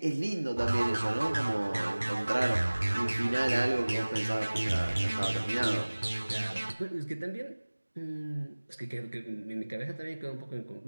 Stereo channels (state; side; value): inverted; both; correlation -1.00